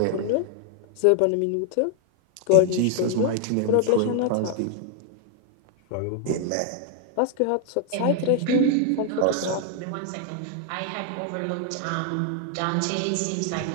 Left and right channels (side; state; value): both; different; correlation 0.00